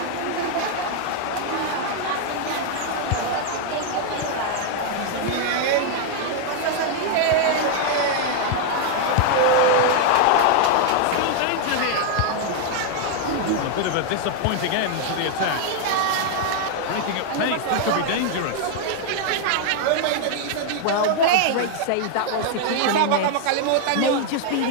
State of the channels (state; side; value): different; both; correlation 0.00